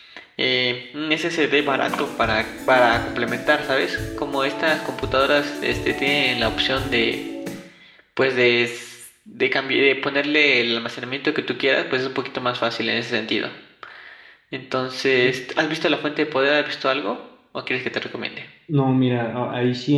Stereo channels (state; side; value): identical; both; correlation 1.00